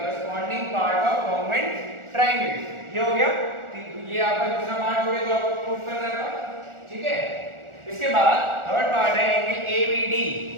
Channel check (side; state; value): left; late; 1.4 ms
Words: part of congruent triangle। ये हो गया, ये आपका दूसरा पार्ट हो गया जो आपको प्रूफ करना था, ठीक है। इसके बाद थर्ड पार्ट है एंगल ABD,